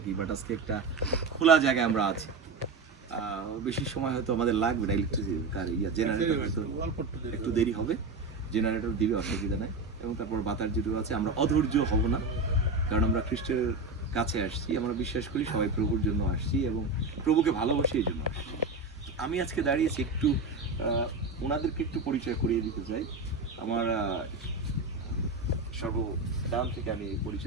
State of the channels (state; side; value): quieter; left; 3.7 dB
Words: বাট আজকে একটা খোলা জায়গায় আমরা আছি। বেশি সময় হয়তো আমাদের লাগবে না, ইলেকট্রিসিটি জেনারেটর হয়তো একটু দেরি হবে, জেনারেটর দিবে, অসুবিধা নাই। এবং তারপর বাতাস যেটুকু আছে, আমরা অধৈর্য হব না, কারণ আমরা খ্রিস্টের কাছে আসছি, আমরা বিশ্বাস করি সবাই প্রভুর জন্য আসছি এবং প্রভুকে ভালোবাসি এই জন্য আসছি। আমি আজকে দাঁড়িয়েছি একটু ওনাদেরকে একটু পরিচয় করিয়ে দিতে চাই। আমার সর্বদান থেকে আমি